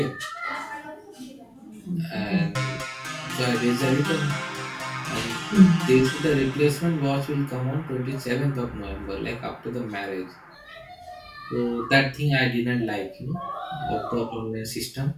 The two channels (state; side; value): identical; both; correlation 1.00